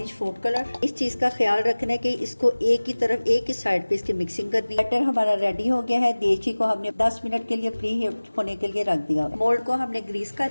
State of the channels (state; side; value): inverted; both; correlation -1.00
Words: फूड कलर। इस चीज का ख्याल रखना है कि इसको एक ही तरफ एक ही साइड पे इसकी मिक्सिंग करनी है। बैटर हमारा रेडी हो गया है। देची को हमने 10 मिनट के लिए प्री हीट होने के लिए रख दिया। मोल्ड को हमने ग्रीस कर